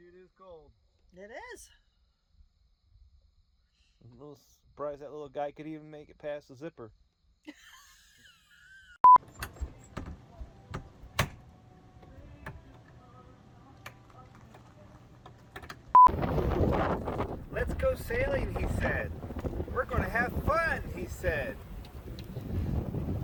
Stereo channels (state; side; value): identical; both; correlation 1.00